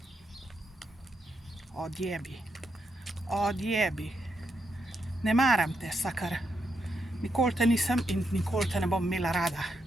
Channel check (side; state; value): both; normal; correlation 0.81